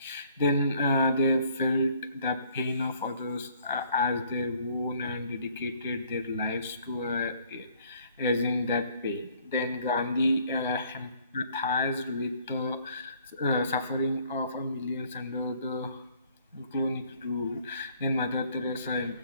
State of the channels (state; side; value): inverted; both; correlation -0.61